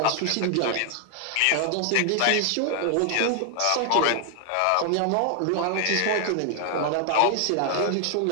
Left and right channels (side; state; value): both; different; correlation 0.00